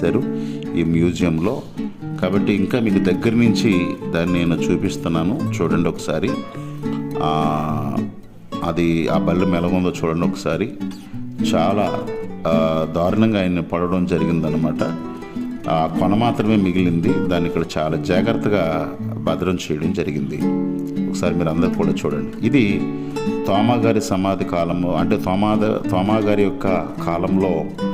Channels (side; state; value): both; identical; correlation 1.00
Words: ఈ మ్యూజియంలో. కాబట్టి ఇంకా మీకు దగ్గర నుంచి దాన్ని నేను చూపిస్తున్నాను, చూడండి ఒకసారి. అది ఆ బల్లెం ఎలాగుందో చూడండి ఒకసారి. చాలా దారుణంగా ఆయన్ని పడడం జరిగిందనమాట. ఆ కొన మాత్రమే మిగిలింది. దాన్ని ఇక్కడ చాలా జాగ్రత్తగా భద్రం చేయడం జరిగింది. ఒకసారి మీరు అందరూ కూడా చూడండి. ఇది తోమా గారి సమాధి కాలంలో, అంటే తోమా గారి యొక్క కాలంలో